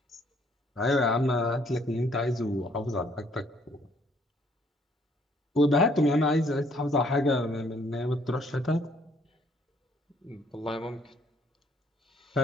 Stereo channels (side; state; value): both; normal; correlation 0.64